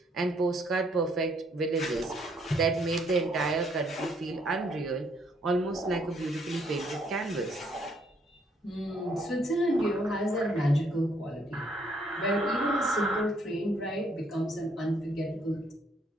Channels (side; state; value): both; normal; correlation 0.68